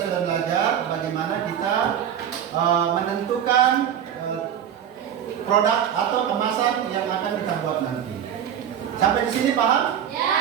belajar bagaimana kita menentukan produk atau kemasan yang akan kita buat nanti. Sampai di sini paham?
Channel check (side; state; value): left; quieter; 9.3 dB